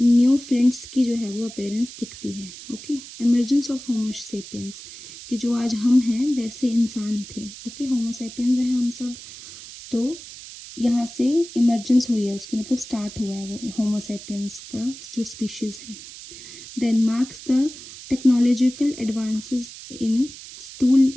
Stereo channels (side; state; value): right; noise; hiss, 15 dB below the sound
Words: फ्लिंट्स की जो है वो अपेयरेंस दिखती है, okay. Emergence of homo sapiens, कि जो आज हम हैं वैसे इंसान थे, ओके। होमो सेपियंस हैं हम सब, तो यहाँ से इमर्जेंस हुई है उसकी, मतलब स्टार्ट हुआ है वो होमो सेपियंस का जो स्पीशीज़ है। Then marks the technological advances in tool